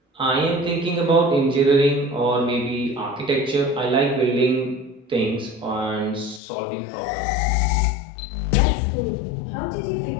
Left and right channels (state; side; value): drops out; right; at 6.4 s